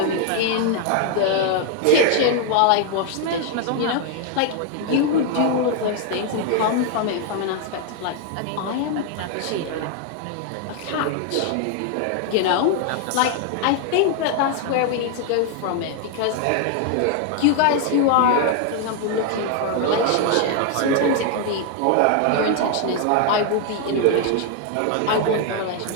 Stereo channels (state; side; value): different; both; correlation 0.00